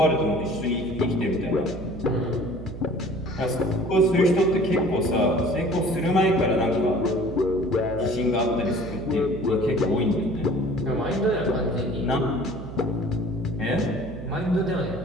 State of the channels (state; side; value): noise; right; hum, 10 dB below the sound